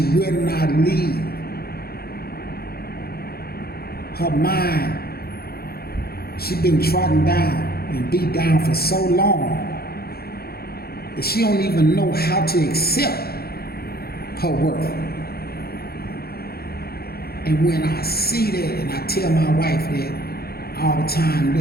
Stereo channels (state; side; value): late; right; 0.45 ms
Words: will not leave. Her mind, she been trodden down and beat down for so long that she don't even know how to accept her worth. And when I see that, and I tell my wife that all the time,